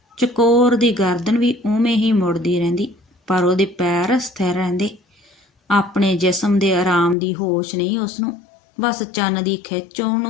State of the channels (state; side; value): drops out; right; at 7.2 s